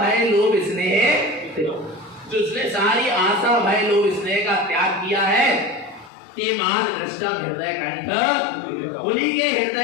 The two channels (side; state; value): right; drops out; at 6.1 s